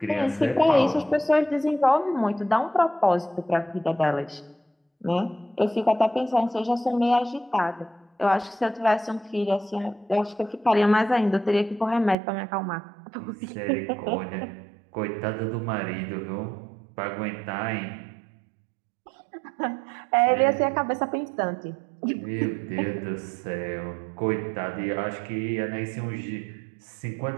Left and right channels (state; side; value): drops out; left; at 12.2 s